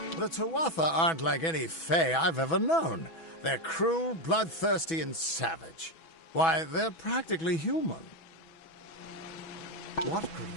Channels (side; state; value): right; late; 6.1 ms